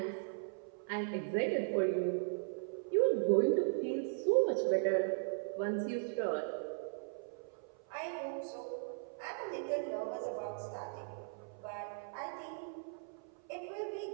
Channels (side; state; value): left; silent; 52 dB below the other